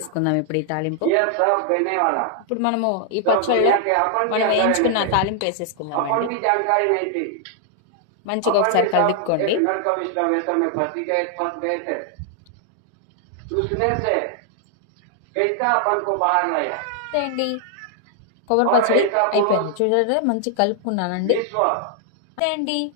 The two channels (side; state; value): both; different; correlation 0.00